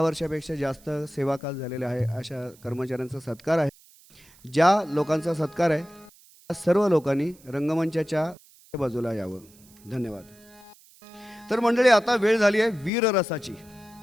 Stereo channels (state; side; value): noise; right; hiss, 26 dB below the sound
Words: वर्षापेक्षा जास्त सेवाकाल झालेले आहे अशा कर्मचाऱ्यांचा सत्कार आहे. ज्या लोकांचा सत्कार आहे त्या सर्व लोकांनी रंगमंचाच्या बाजूला यावं. धन्यवाद. तर मंडळी, आता वेळ झाली आहे वीररसाची.